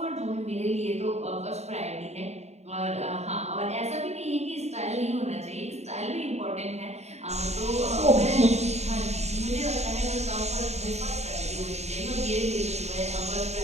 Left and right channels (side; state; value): left; late; 0.32 ms